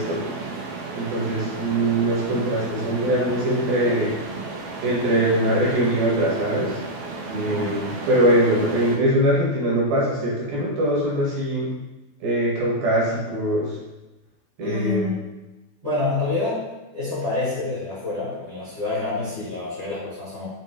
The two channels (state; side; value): late; left; 12 ms